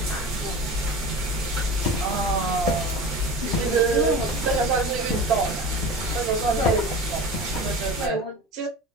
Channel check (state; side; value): normal; both; correlation 0.34